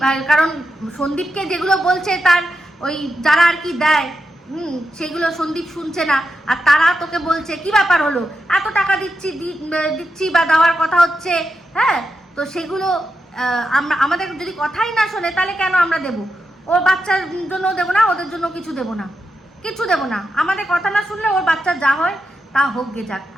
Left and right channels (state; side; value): normal; both; correlation 0.87